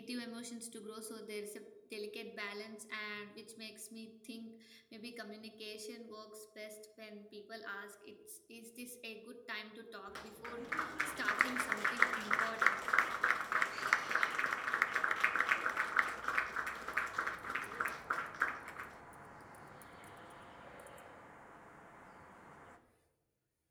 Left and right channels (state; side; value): identical; both; correlation 1.00